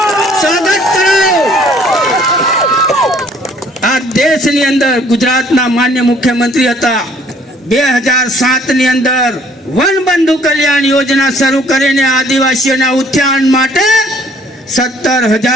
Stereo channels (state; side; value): normal; both; correlation 0.59